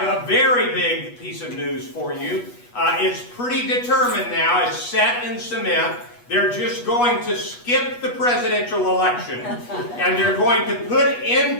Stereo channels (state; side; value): late; right; 8.3 ms